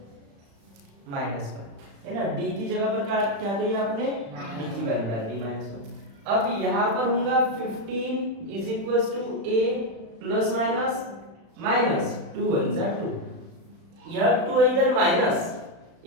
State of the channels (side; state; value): left; late; 36 ms